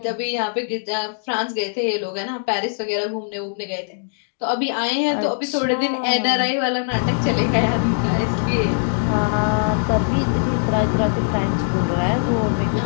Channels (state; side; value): silent; right; digital silence